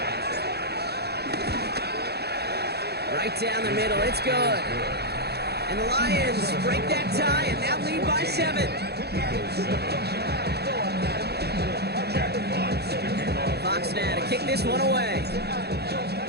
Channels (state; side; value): late; left; 0.47 ms